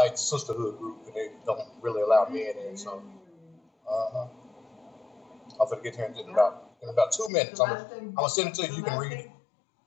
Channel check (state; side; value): drops out; right; at 7.3 s